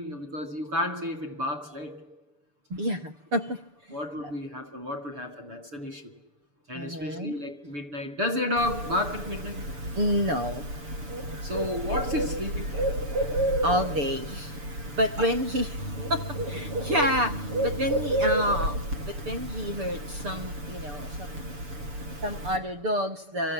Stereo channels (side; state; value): left; late; 6.9 ms